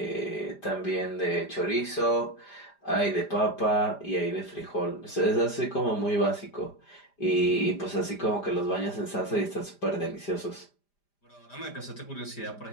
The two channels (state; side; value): late; right; 5.0 ms